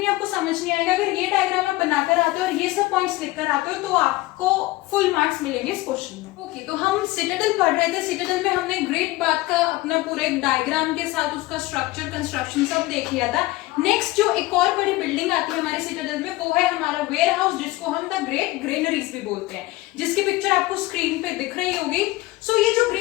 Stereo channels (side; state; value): right; quieter; 19.3 dB